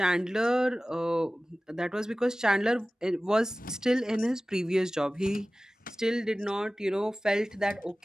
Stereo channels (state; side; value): normal; both; correlation 0.97